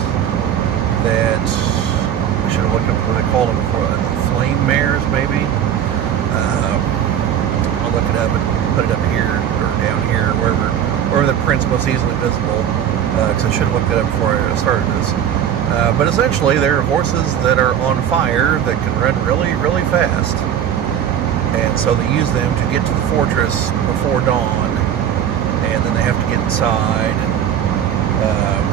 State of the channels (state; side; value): quieter; left; 9.5 dB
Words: that I should have looked up what they called them before. Flame mares, maybe. I'll look it up and put it up here or down here, wherever the print's most easily visible. Because I should have looked it up before I started this. But essentially, they're horses that are on fire that can run really, really fast. And so they use them to get to the fortress before dawn. And then they have to get inside. And